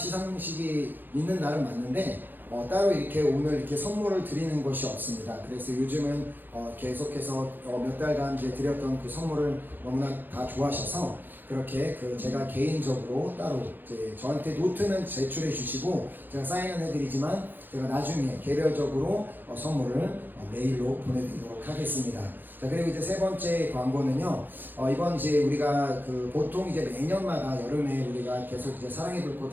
있는 날은 맞는데 따로 이렇게 오늘 이렇게 선물을 드리는 것이 없습니다. 그래서 요즘은 계속해서 몇 달간 이제 드렸던 그 선물을 너무나 다 좋아하셔서 그렇게 제가 개인적으로 따로 이제 저한테 노트는 제출해 주시고 제가 사인은 해드리지만 제가 나중에 개별적으로 선물을 메일로 보내드리도록 하겠습니다. 자, 그리고 이제 세 번째 광고는요, 이번 이제 우리가 보통 이제 매년마다 여름에 우리가 계속 이제 사랑의 불꽃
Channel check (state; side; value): late; left; 0.091 ms